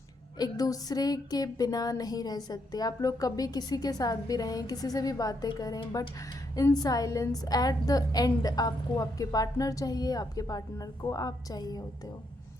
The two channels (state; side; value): normal; both; correlation 0.77